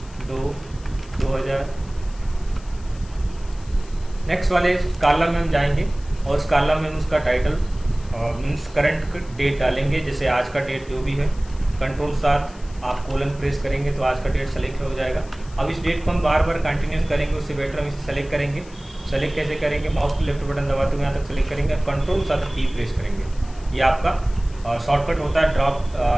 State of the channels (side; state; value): left; noise; hiss, 24 dB below the sound